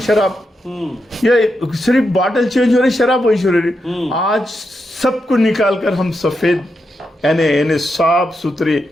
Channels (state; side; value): normal; both; correlation 0.85